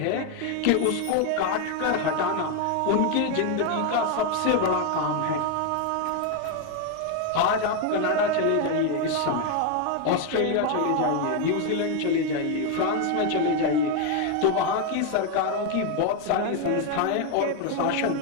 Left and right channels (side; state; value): both; different; correlation 0.01